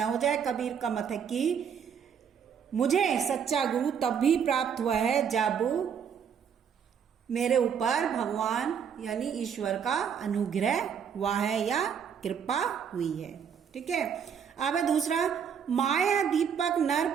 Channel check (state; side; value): quieter; left; 7.6 dB